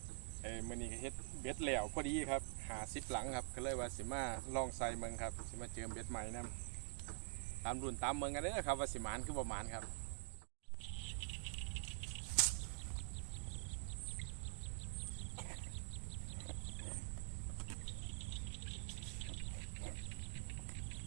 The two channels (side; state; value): left; silent; digital silence